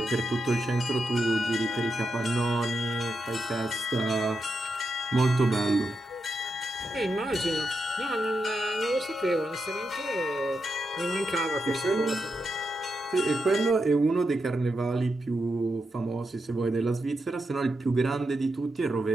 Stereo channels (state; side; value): normal; both; correlation 0.85